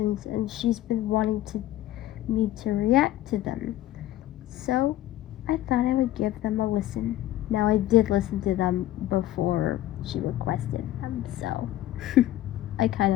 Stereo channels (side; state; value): right; quieter; 14.1 dB